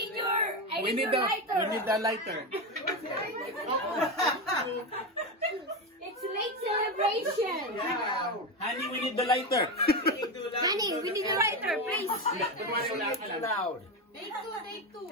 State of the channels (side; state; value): both; normal; correlation 0.15